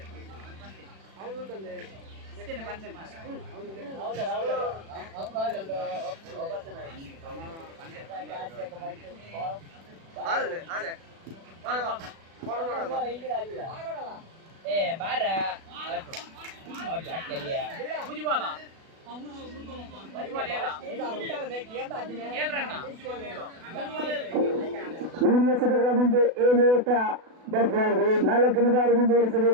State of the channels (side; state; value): left; late; 36 ms